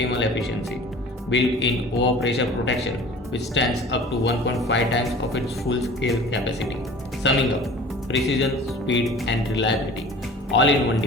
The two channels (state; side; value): normal; both; correlation 0.44